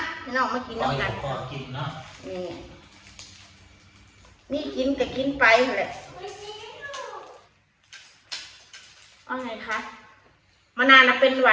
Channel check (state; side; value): identical; both; correlation 1.00